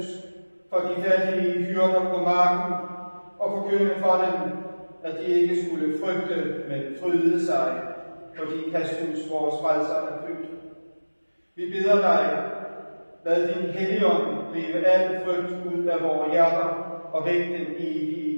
for de fattige hyrder på marken og forkynde for dem, at de ikke skulle frygte, men fryde sig, fordi Kristus, vores frelser, er født. Vi beder dig, lad din Helligånd drive al frygt ud af vores hjerter og vække den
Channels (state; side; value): inverted; both; correlation -1.00